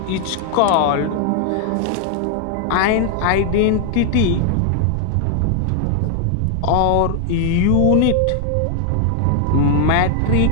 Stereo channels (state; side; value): different; both; correlation 0.00